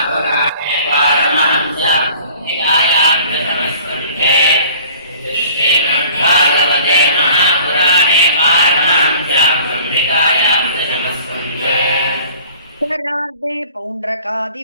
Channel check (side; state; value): both; inverted; correlation -0.49